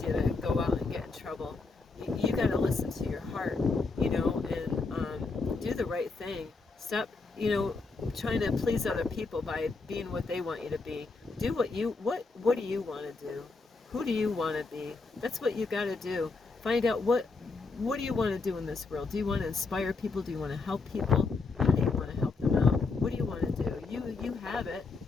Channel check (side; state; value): right; quieter; 4.0 dB